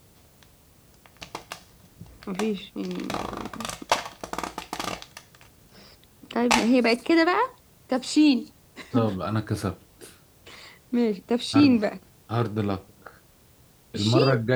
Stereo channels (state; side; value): identical; both; correlation 1.00